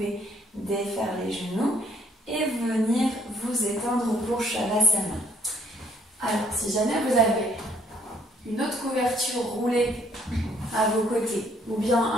défaire les genoux et venir vous étendre pour Shavasana. Alors, si jamais vous avez une autre couverture roulée à vos côtés, ou bien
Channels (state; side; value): normal; both; correlation 0.66